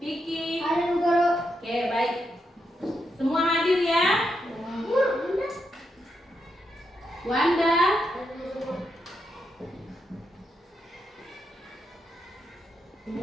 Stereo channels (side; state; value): both; normal; correlation 0.83